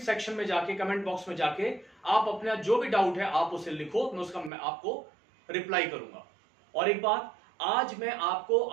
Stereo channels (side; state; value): left; drops out; at 4.5 s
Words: में जाके, कमेंट बॉक्स में जाके आप अपना जो भी डाउट है आप उसे लिखो, मैं आपको रिप्लाई करूंगा। और एक बात, आज मैं आपको